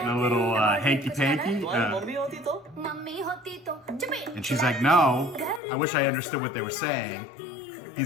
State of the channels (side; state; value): right; drops out; at 5.6 s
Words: a little hanky-panky? And she's like, no. I wish I understood what they were saying.